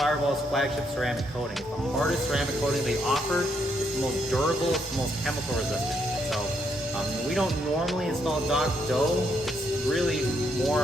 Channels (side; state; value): both; normal; correlation 0.75